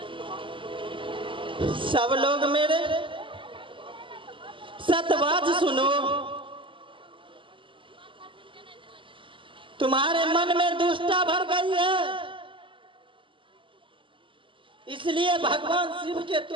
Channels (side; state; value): left; late; 0.25 ms